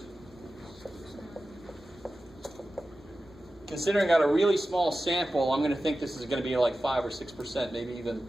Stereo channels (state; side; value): normal; both; correlation 0.94